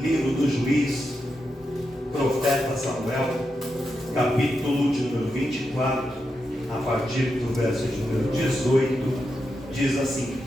livro do juiz, profeta Samuel, capítulo de número 24, a partir do verso de número 18, diz assim:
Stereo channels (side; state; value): both; normal; correlation 0.87